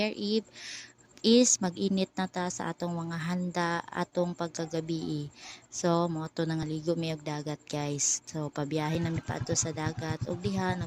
Eve is mag-init na ta sa atong mga handa atong pagkagabi. So mo to nangaligo mi og dagat guys. So pabiyahe na mi paadto sa dagat ug diha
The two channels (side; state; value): both; identical; correlation 1.00